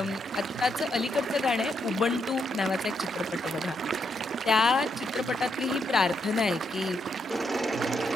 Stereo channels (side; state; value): both; normal; correlation 0.78